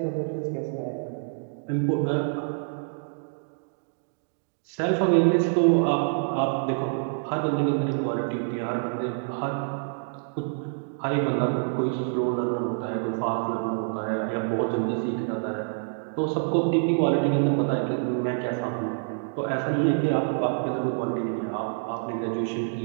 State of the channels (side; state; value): left; silent; digital silence